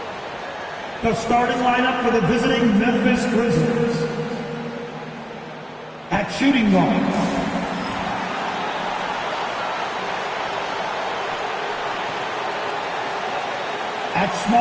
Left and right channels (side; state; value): both; identical; correlation 1.00